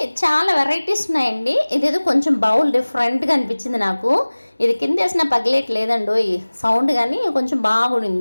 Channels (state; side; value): inverted; both; correlation -1.00